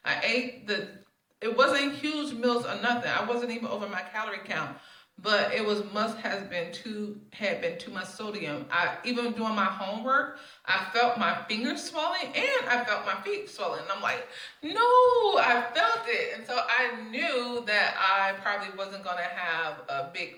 It wasn't huge meals or nothing. I wasn't even over my calorie count, but it had been too much sodium. Even doing my homework, I felt my fingers swelling and I felt my feet swelling. And I'm like, no, I felt it. And so I knew that I probably wasn't going to have a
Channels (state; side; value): identical; both; correlation 1.00